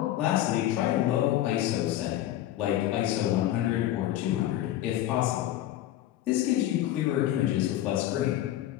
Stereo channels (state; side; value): quieter; right; 13.4 dB